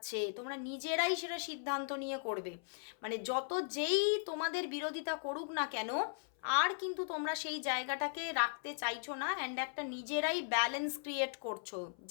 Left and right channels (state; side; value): silent; right; 53 dB below the other